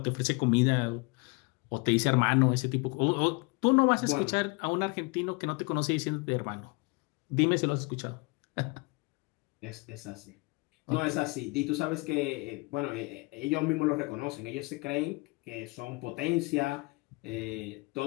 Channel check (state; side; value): quieter; right; 27.5 dB